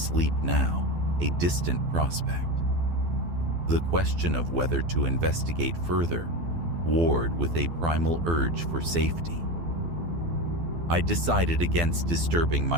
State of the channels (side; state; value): left; late; 12 ms